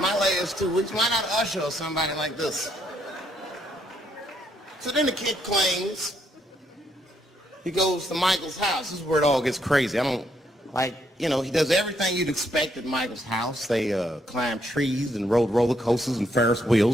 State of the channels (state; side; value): normal; both; correlation 0.73